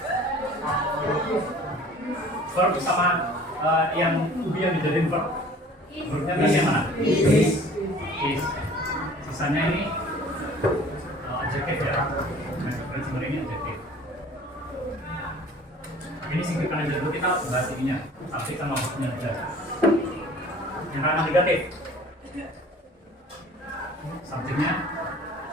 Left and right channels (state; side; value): normal; both; correlation 0.48